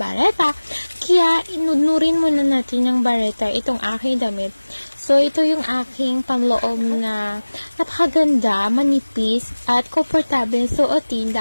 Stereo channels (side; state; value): both; inverted; correlation -1.00